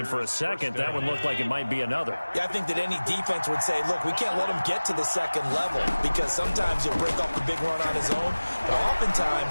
for a second, that one looked like it might be another. Yeah, I think that any defense would say, look, we can't let him get to the 2nd level, because sometimes he'll break off the big run on his own, but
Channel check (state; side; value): inverted; both; correlation -1.00